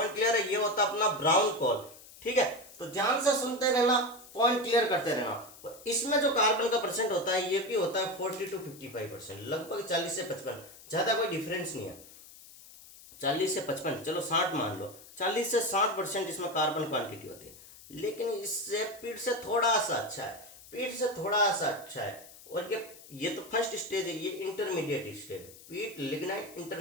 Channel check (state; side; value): noise; left; hiss, 20 dB below the sound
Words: क्लियर है? ये होता है अपना ब्राउन कोल। ठीक है, तो ध्यान से सुनते रहना, पॉइंट क्लियर करते रहना। और इसमें जो कार्बन का परसेंट होता है ये भी होता है 40 to 55%, लगभग 40 से 55, ज्यादा कोई डिफरेंस नहीं है। 40 से 55, चलो 60 मान लो, 40 से 60% इसमें कार्बन क्वांटिटी होती है। लेकिन इससे पीट से थोड़ा सा अच्छा है, पीट से थोड़ा सा अच्छा है। और ये तो फर्स्ट स्टेज है, ये इंटरमीडिएट स्टेज है। पीट, लिग्नाइट